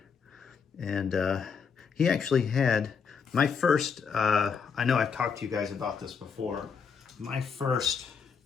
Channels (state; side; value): quieter; right; 6.1 dB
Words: and he actually had my first. I know I've talked to you guys about this before. My first